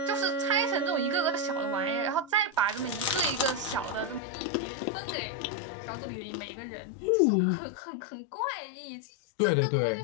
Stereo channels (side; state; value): right; drops out; at 4.2 s